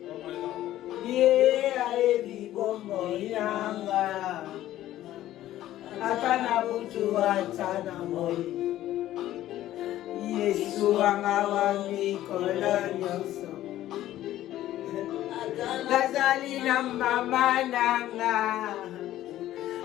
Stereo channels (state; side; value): quieter; right; 13.7 dB